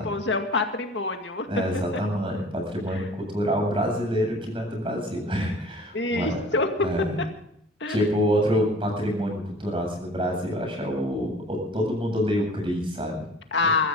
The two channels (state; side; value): normal; both; correlation 0.45